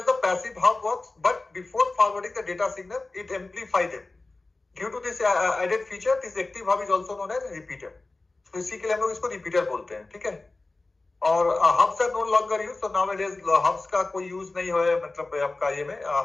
the passive hub works, but before forwarding the data signal, it amplifies them. Due to this added feature, this active hub is also known as repeater. So इसी के लिए हम लोग इसको repeater बोलते हैं, ठीक है। और hubs are no longer used, so nowadays hubs का कोई यूज नहीं हो, मतलब आपका ये में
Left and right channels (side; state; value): right; quieter; 3.3 dB